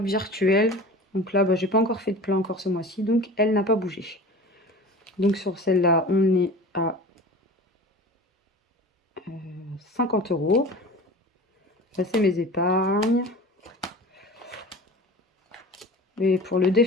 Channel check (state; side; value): normal; both; correlation 0.37